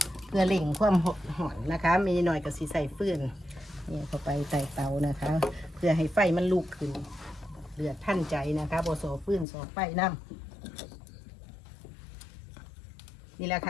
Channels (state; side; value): drops out; right; at 9.5 s